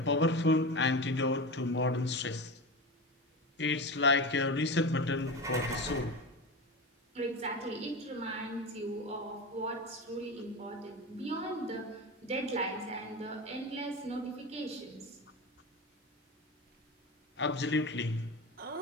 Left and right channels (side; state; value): both; normal; correlation 0.24